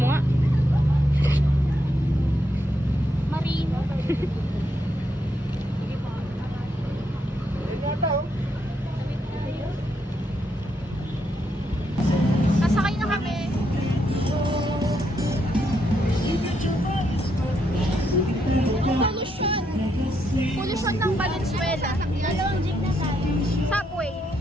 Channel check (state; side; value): normal; both; correlation 0.78